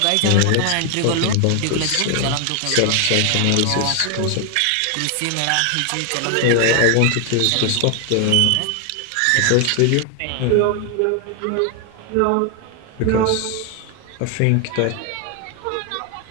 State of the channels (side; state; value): both; different; correlation 0.01